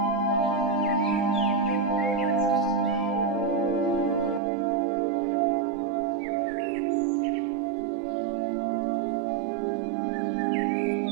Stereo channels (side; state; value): left; drops out; at 4.4 s